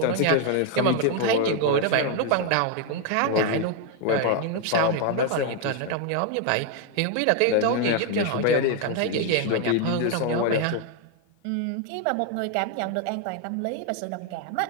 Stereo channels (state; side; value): different; both; correlation 0.01